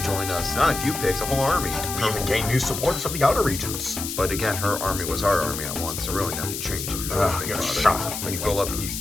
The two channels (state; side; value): noise; left; hiss, 6 dB below the sound